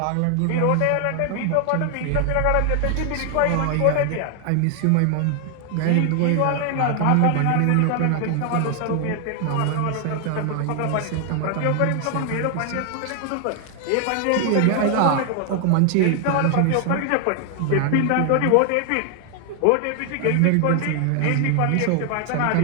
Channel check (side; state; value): both; different; correlation 0.00